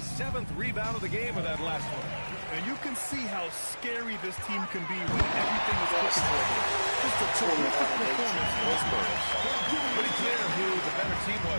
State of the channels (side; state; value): both; inverted; correlation -1.00